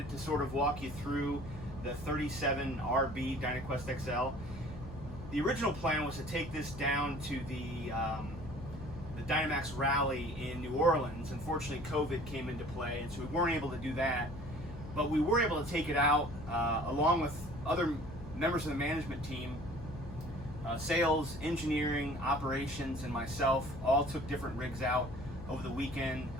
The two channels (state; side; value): noise; left; hum, 12 dB below the sound